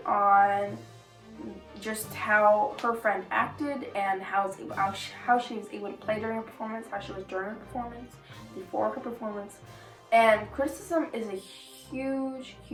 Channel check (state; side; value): identical; both; correlation 1.00